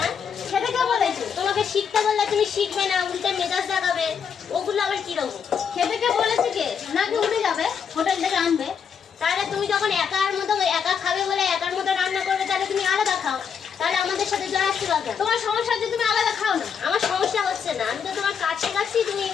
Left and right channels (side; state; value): right; quieter; 7.0 dB